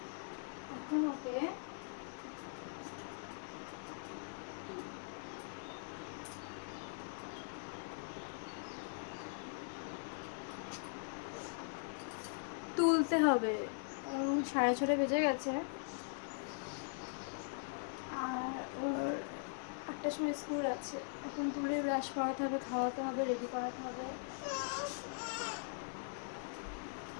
এখন ওকে তুলতে হবে। 6:30 বেজে গেছে, আর ওর 8টার সময় স্কুল আছে। এখন তুলে ব্রাশ করাতে হবে, খাওয়াতে হবে, রেডি করাতে হবে।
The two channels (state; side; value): silent; right; digital silence